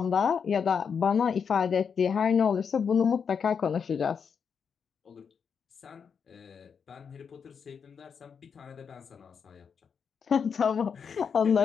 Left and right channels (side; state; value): right; quieter; 6.5 dB